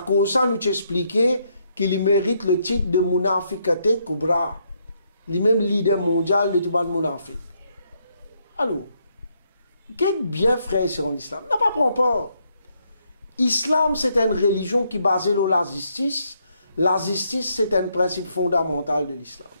cause nous expliquait qu'il mérite le titre de Munafiqate Kubra, le même leader mondial de tout le Munafik. Alors, qu'est-ce bien frère c'est en islam? N'a pas prendre peur. Islam, c'est une religion qui est basée sur la justice. La justice, c'est un principe fondamental de l'islam.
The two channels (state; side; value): inverted; both; correlation -0.75